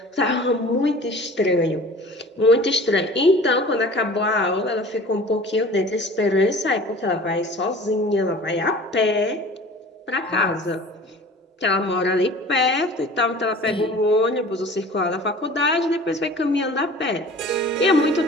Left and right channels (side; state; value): both; normal; correlation 0.44